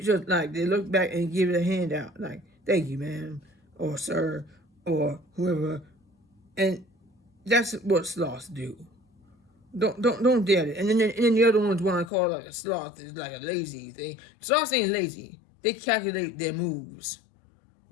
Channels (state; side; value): drops out; right; at 12.1 s